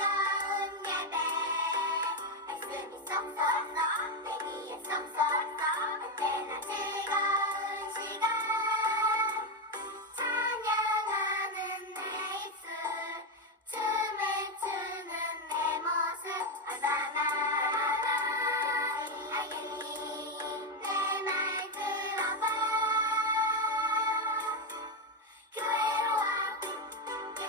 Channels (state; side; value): normal; both; correlation 0.08